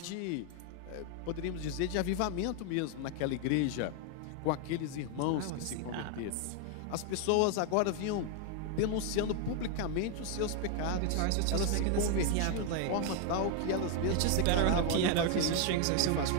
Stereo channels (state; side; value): different; both; correlation 0.01